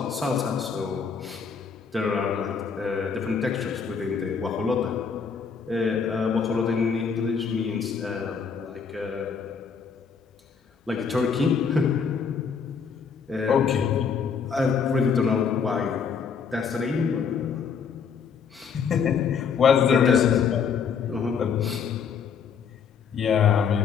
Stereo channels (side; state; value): right; quieter; 6.3 dB